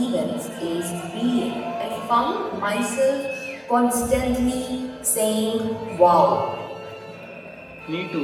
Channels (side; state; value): both; identical; correlation 1.00